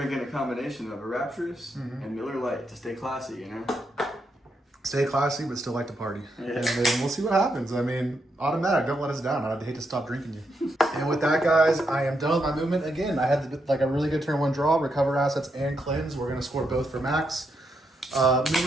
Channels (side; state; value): both; normal; correlation 0.81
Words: a combination of a Rapturous and Miller Lite to stay classy, you know? Stay classy, but still like to party. Yeah. And then we'll see what happens. I mean, automatic, don't let us down. I'd hate to stop drinking you. And with that, guys, I am done with my movement. Again, I had like a really good turn 1 draw, recover assets, and cleanse. We're going to score both for max.